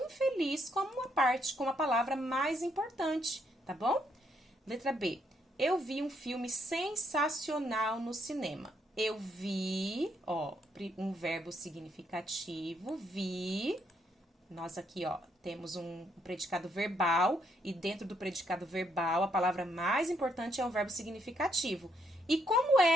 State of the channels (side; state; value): both; normal; correlation 0.74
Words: como uma parte, como a palavra mais importante, tá bom? Letra B. Eu vi um filme sensacional no cinema. Eu vi, ó, um verbo significativo, vi. Nós aqui, ó, temos um predicado verbal e dentro do predicado verbal, a palavra mais importante é o verbo significativo. E como